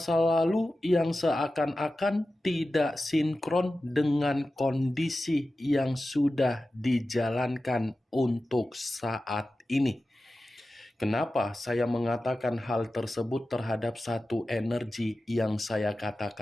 lalu yang seakan-akan tidak sinkron dengan kondisi yang sudah dijalankan untuk saat ini. Kenapa saya mengatakan hal tersebut terhadap satu energi yang saya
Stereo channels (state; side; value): normal; both; correlation 0.94